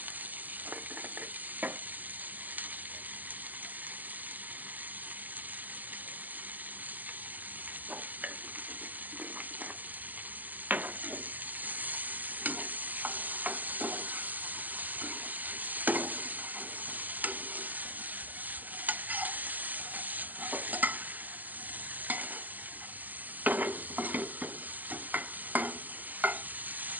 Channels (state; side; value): late; left; 0.083 ms